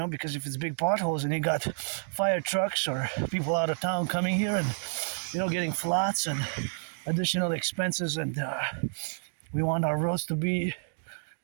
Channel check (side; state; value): left; silent; digital silence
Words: because if it's big potholes and you got fire trucks or people out of town coming here and getting flats and additional expenses, and we want our roads to be